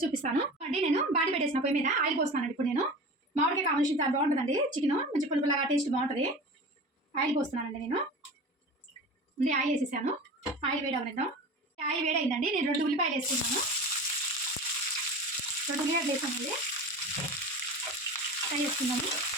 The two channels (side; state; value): both; normal; correlation 0.34